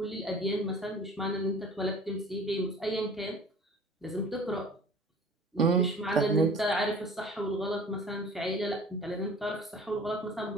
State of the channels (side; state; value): both; normal; correlation 0.45